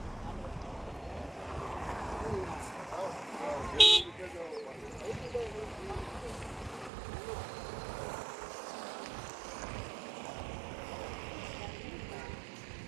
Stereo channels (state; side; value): drops out; left; at 6.9 s